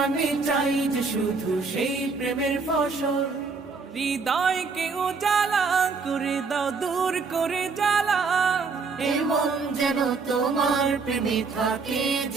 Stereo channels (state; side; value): quieter; left; 4.6 dB